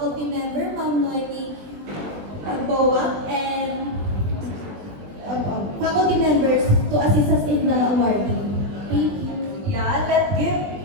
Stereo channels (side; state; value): left; late; 20 ms